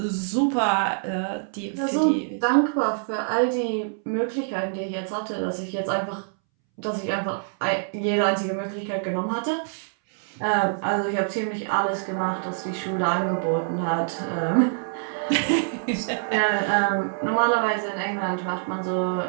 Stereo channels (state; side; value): silent; left; 62 dB below the other